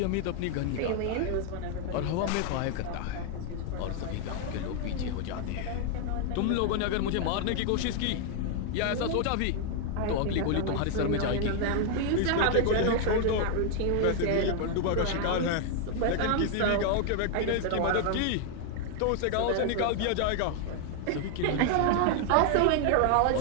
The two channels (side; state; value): both; different; correlation 0.00